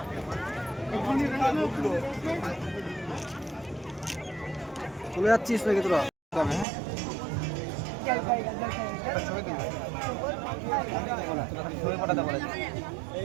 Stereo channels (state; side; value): drops out; left; at 6.7 s